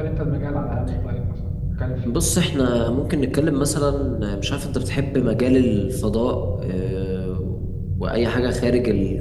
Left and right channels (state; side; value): identical; both; correlation 1.00